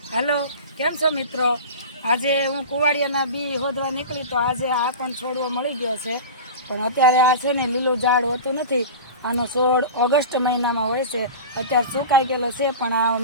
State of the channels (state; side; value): inverted; both; correlation -0.31